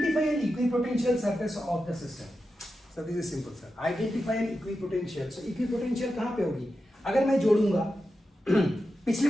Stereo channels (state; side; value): normal; both; correlation 0.90